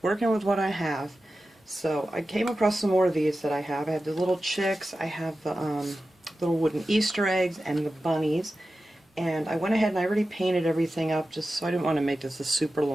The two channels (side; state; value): both; normal; correlation 0.93